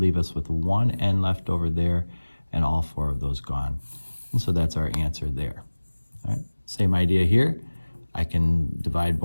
us with 1 n left over there, and all 4 of those gone. And so that's our answer there. All right, same idea here. I can divide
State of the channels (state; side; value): inverted; both; correlation -1.00